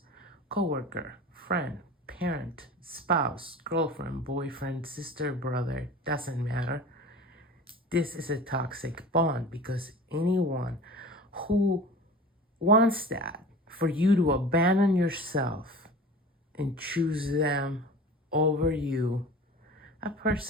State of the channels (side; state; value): both; normal; correlation 0.38